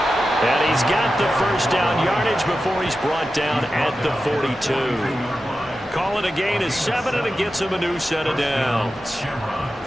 And he's got the 1st down yardage before he's brought down at the 42. Call it a gain of 7, and it gets him a new set of downs.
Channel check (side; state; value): both; normal; correlation 0.92